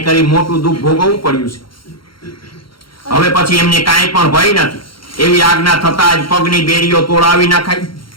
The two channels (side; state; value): right; late; 0.73 ms